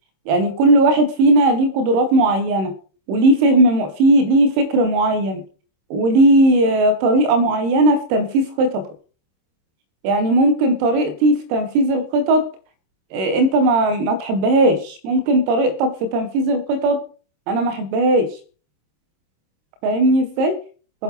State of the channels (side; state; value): left; late; 26 ms